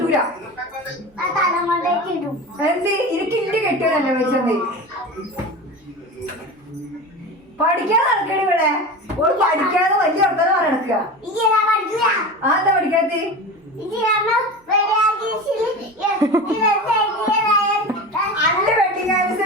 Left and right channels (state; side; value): normal; both; correlation 0.29